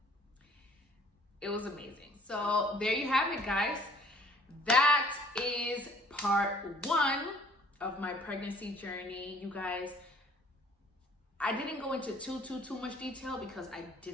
it was amazing. So there you have it, guys. That is part 1 of my pregnancy journey. You guys, I didn't go into too much detail because I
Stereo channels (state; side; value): normal; both; correlation 0.56